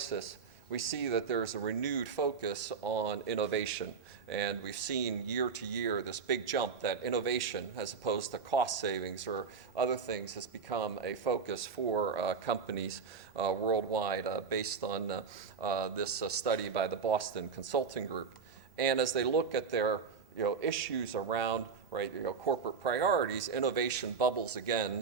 we see that there's a renewed focus on innovation. And we've seen year to year this big jump that innovation, as opposed to cost savings or other things, has become a focus for companies worldwide based on this study by the Boston Consulting Group. And as they look at their issues around corporate priorities, innovation bubbles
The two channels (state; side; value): quieter; left; 5.6 dB